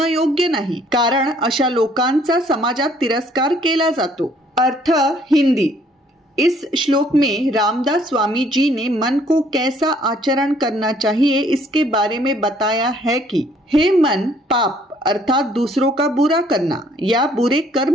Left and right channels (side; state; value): both; normal; correlation 0.62